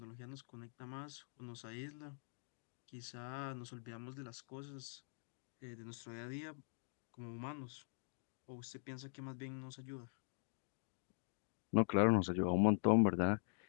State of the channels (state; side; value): silent; right; digital silence